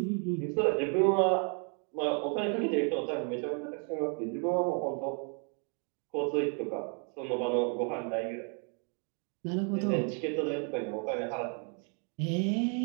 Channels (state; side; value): quieter; left; 39.6 dB